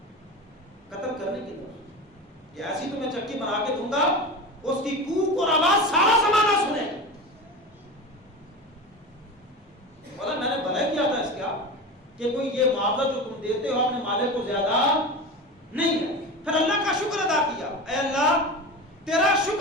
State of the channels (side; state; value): both; normal; correlation 0.28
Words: قتل کرنے کی طرف. یہ ایسی تو میں چکی بنا کے دوں گا اس کی کوک اور آواز سارا زمانہ سنے. بولا میں نے بھلا کیا تھا اس کا کہ کوئی یہ معاوضہ جو تم دیتے ہو اپنے مالک کو زیادہ نہیں ہے. پھر اللہ کا شکر ادا کیا، اے اللہ تیرا